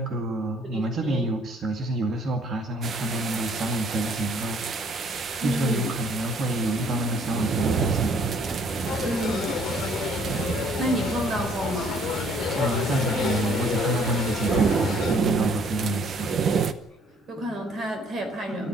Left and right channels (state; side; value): normal; both; correlation 0.61